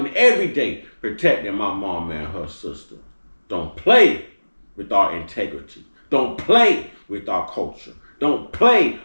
every day, protecting my mom and her sister. Don't play with our integrity. Don't play with our culture. Don't play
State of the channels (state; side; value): inverted; both; correlation -1.00